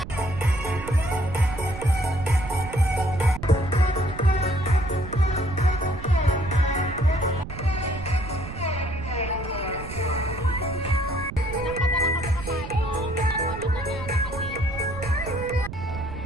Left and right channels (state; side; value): noise; right; rumble, 10 dB below the sound